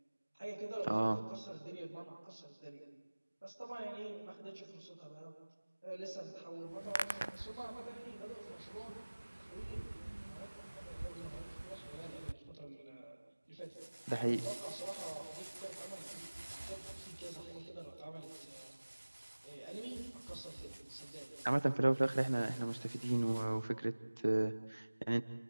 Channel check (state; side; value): inverted; both; correlation -1.00